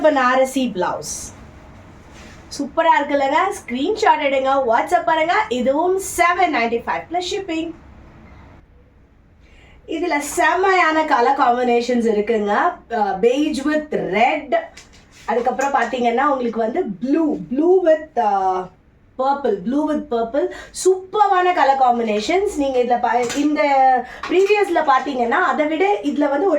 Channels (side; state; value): both; identical; correlation 1.00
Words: Banarasi blouse. சூப்பரா இருக்குல்லங்க. ஸ்கிரீன்ஷாட் எடுங்க, வாட்ஸ்அப் பண்ணுங்க. இதுவும் $795 plus shipping. இதுல செமையான கலர் காம்பினேஷன்ஸ் இருக்குங்க. beige with red, அதுக்கப்புறம் பாத்தீங்கன்னா உங்களுக்கு வந்து blue with purple சூப்பரான கலர் காம்பினேஷன்ஸ். நீங்க இந்த ப்ரீவியஸ்ல பாத்தீங்கன்னா அதை விட இதுல வந்து